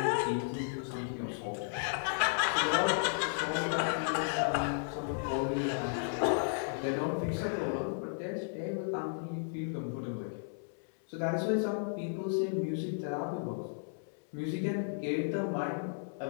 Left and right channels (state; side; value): silent; right; digital silence